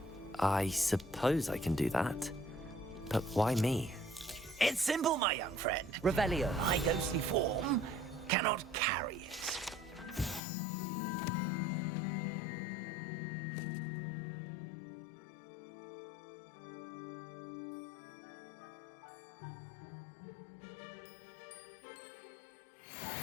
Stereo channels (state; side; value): drops out; right; at 10.4 s